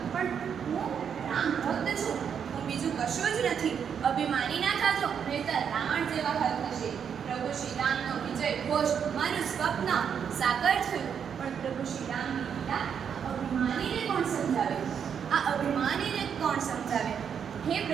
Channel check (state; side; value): quieter; left; 7.6 dB